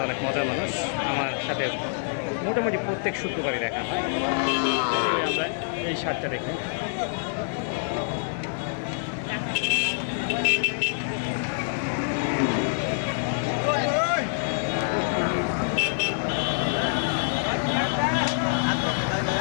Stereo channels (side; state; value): right; silent; digital silence